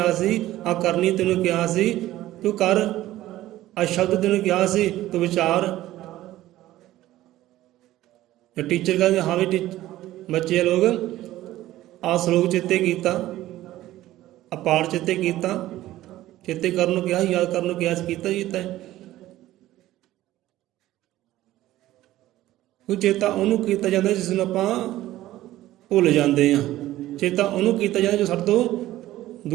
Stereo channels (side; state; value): left; quieter; 15.1 dB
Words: ਸੀ, ਆਹ ਕਰਨੀ ਤੈਨੂੰ ਕਿਹਾ ਸੀ, ਤੂੰ ਕਰ। ਆਹ ਸ਼ਬਦ ਤੈਨੂੰ ਕਿਹਾ ਸੀ, ਤੂੰ ਵਿਚਾਰ। ਟੀਚਰ ਕਹਿੰਦੇ ਹਾਂ ਵੀ ਬੱਚੇ ਲੋਕ ਆ ਸ਼ਲੋਕ ਚੇਤੇ ਕੀਤਾ, ਆ ਪਾਠ ਚੇਤੇ ਕੀਤਾ। ਚੇਤੇ ਕਰਨ ਨੂੰ ਕਿਹਾ, ਯਾਦ ਕਰਨ ਨੂੰ ਕਿਹਾ, ਕੀਤਾ ਹੀ ਕੀਤਾ ਹੈ। ਕੋਈ ਚੇਤਾ ਉਹਨੂੰ ਕੀਤਾ ਜਾਂਦਾ ਜਿਸ ਨੂੰ ਆਪਾਂ ਭੁੱਲ ਜਾਂਦੇ ਹਾਂ। ਚੇਤਾ ਉਹਨੂੰ ਕੀਤਾ ਜਾਂਦਾ ਜੋ ਸਾਡੇ ਤੋਂ